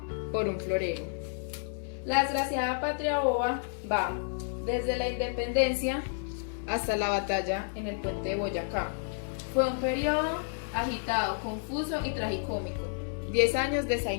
por un florero. La desgraciada patria boba va desde la independencia hasta la batalla en el puente de Boyacá. Fue un periodo agitado, confuso y tragicómico. 10 años de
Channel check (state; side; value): silent; right; digital silence